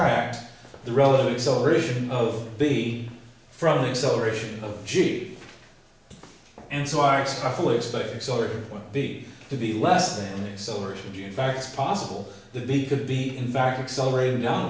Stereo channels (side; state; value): both; identical; correlation 1.00